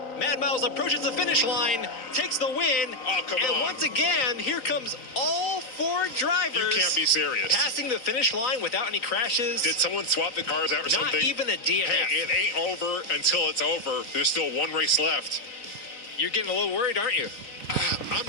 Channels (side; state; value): right; late; 3.9 ms